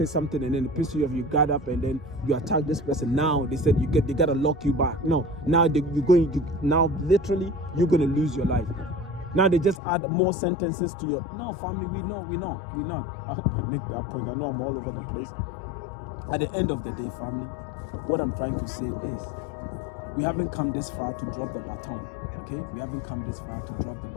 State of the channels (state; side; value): drops out; right; at 9.8 s